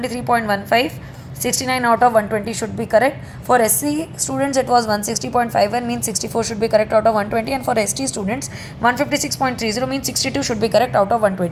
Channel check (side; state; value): both; identical; correlation 1.00